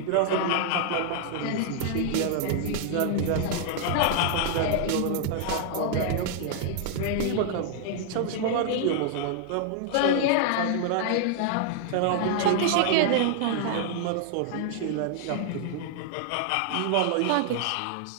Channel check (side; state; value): both; different; correlation 0.00